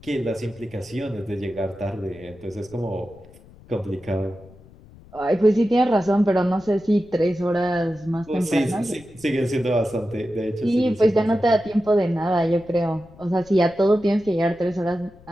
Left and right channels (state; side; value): noise; left; rumble, 23 dB below the sound